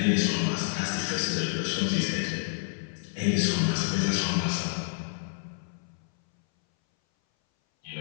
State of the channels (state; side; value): silent; right; 59 dB below the other